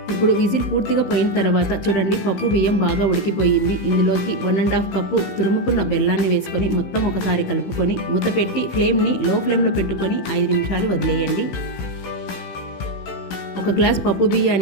ఇప్పుడు విజిల్ పూర్తిగా పోయిన తర్వాత చూడండి, పప్పు బియ్యం బాగా ఉడికిపోయింది. ఇందులోకి 1½ కప్పు తురుముకున్న బెల్లాన్ని వేసుకొని మొత్తం ఒకసారి కలుపుకొని మూత పెట్టి ఫ్లేమ్ని లో ఫ్లేమ్లో పెట్టుకొని 5 నిమిషాలు వదిలేయండి. 1 గ్లాస్ పప్పు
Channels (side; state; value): right; late; 16 ms